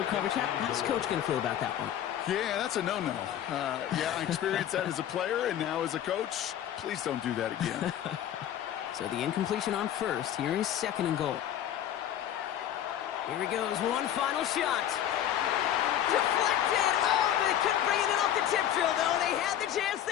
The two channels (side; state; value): right; quieter; 10.9 dB